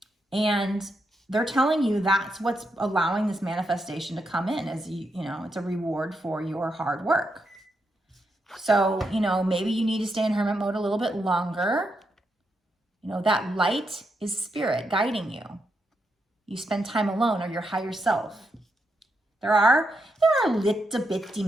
And they're telling you that's what's allowing this manifestation to come in, as you know, it's a reward for your hard work. So, you know, maybe you need to stay in Hermit mode a little bit longer. You know, that light is spirit guiding you. You spend time alone, or your higher self. There are little bitty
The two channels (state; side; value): normal; both; correlation 0.82